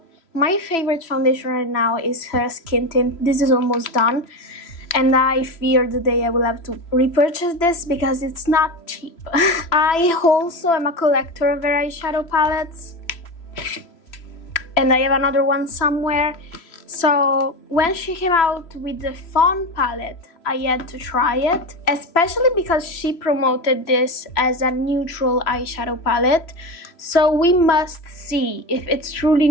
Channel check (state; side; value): late; right; 3.0 ms